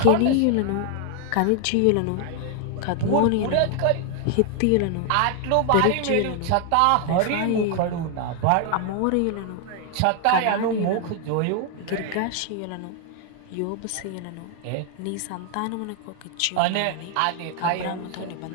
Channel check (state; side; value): different; both; correlation 0.00